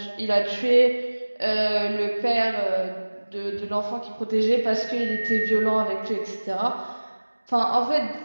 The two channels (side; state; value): both; inverted; correlation -1.00